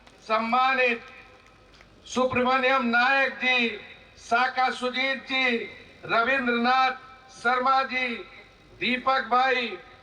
सम्मानित सुब्रमण्यम नायक जी, साका सुजीत जी, रविंद्रनाथ शर्मा जी, दीपक भाई,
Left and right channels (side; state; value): both; identical; correlation 1.00